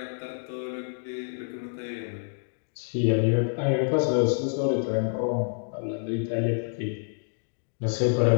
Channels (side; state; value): right; silent; digital silence